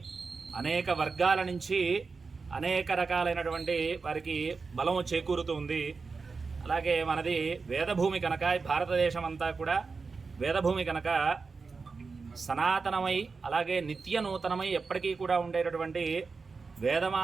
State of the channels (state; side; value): quieter; left; 4.6 dB